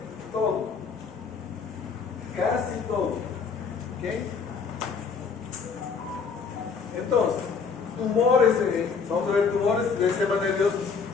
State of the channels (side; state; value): right; quieter; 5.5 dB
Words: todo. Casi todo. ¿Ok? Entonces, tumores, vamos a ver tumores del sistema